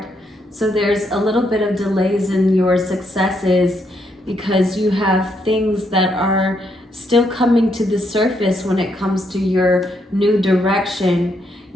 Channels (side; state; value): both; normal; correlation 0.76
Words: So there's a little bit of delays in your successes because you have things that are still coming to the surface when it comes to your new direction.